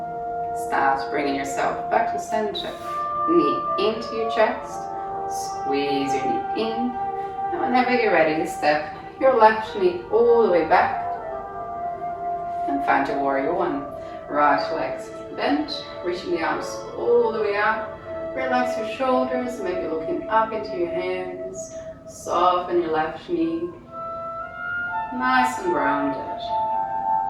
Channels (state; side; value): identical; both; correlation 1.00